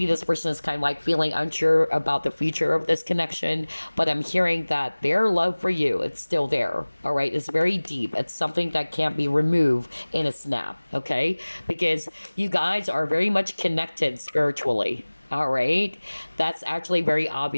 this person is kind of like feeling unsure about the future of this connection, but I'm hearing that their love for you, it's still there, all right? It's very deep. It's something that can't be removed in a snap, okay? Because you guys are very much connected spiritually. All right. That's actually very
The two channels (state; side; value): inverted; both; correlation -1.00